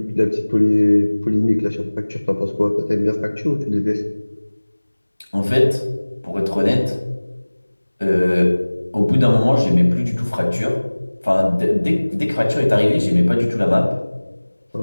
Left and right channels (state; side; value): inverted; both; correlation -1.00